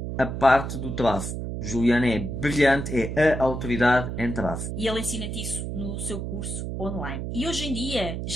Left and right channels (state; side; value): noise; right; hum, 5 dB below the sound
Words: a parte do tráfego. Juliano é brilhante, é a autoridade em tráfego. E ele ensina-te isso no seu curso online. E hoje em dia